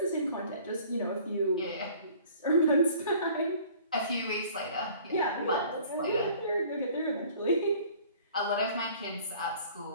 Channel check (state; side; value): inverted; both; correlation -0.51